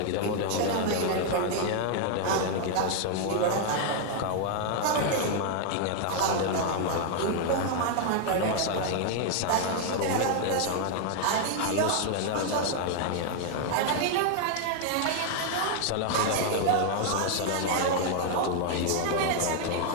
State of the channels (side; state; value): both; different; correlation 0.00